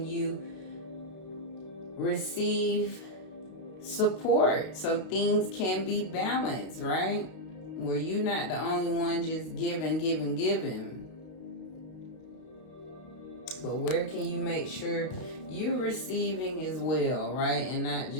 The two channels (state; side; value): late; right; 32 ms